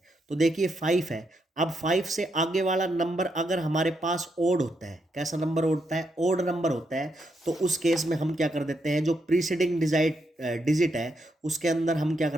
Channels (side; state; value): both; normal; correlation 0.80